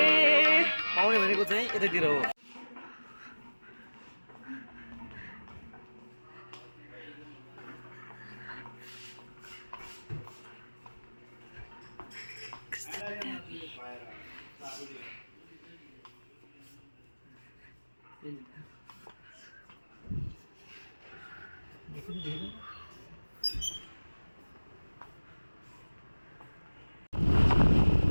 पाउने भनेको चाहिँ यतातिर हो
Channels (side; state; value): both; inverted; correlation -1.00